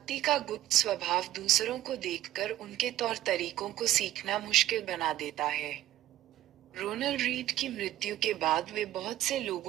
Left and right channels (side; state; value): left; quieter; 13.8 dB